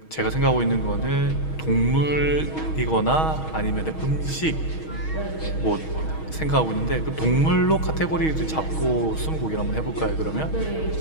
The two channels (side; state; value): right; late; 6.3 ms